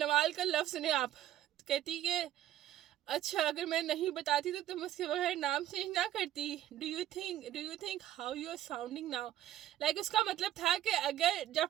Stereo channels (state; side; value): quieter; left; 12.8 dB